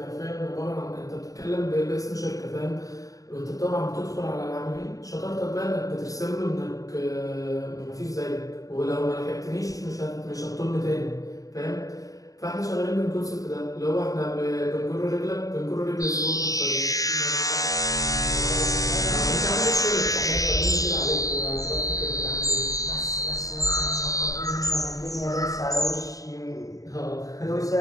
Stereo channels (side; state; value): right; late; 0.17 ms